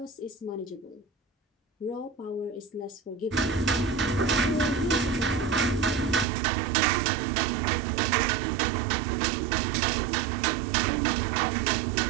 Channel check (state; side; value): drops out; left; at 6.2 s